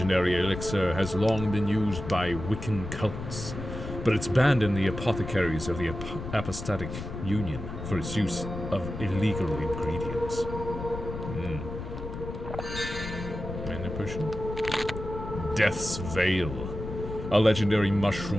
elixir has long been used by Wiccan cults, but it's banned in the apothecaries of the Apostatic Union for its use of illegal ingredients. Mana potion? Death's Veil, a legendary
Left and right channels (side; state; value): left; noise; rumble, 8 dB below the sound